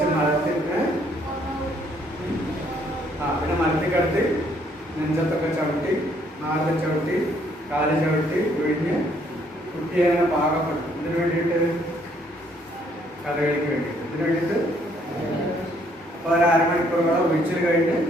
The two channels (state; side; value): normal; both; correlation 0.67